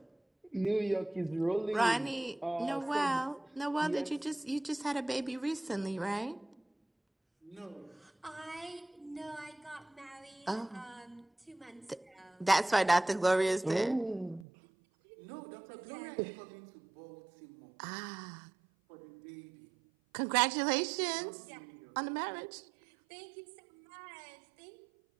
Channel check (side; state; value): left; drops out; at 14.5 s